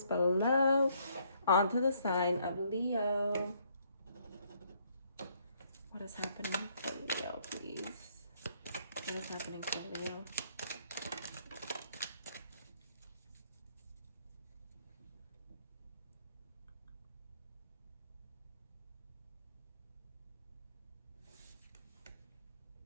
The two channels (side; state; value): both; inverted; correlation -0.68